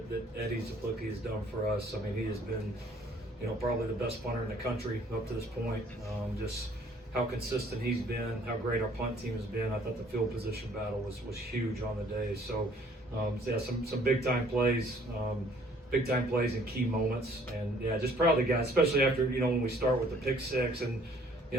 Eddie Zaplucki has done for us. I mean, he has been, probably the best punter in the country up to this point. Just how consistent he's been, how great our punt team has been. I thought the field position battle was huge on the day. So yeah, some big time plays. Big time plays in key moments, and yeah, just proud of the guys, especially after when we start with the pick six, and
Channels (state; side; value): normal; both; correlation 0.59